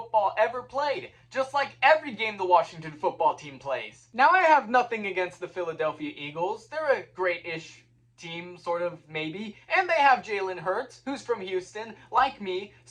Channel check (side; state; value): both; identical; correlation 1.00